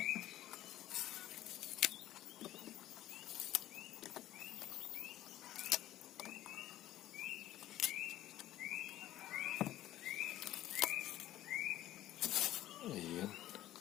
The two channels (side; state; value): right; quieter; 14.0 dB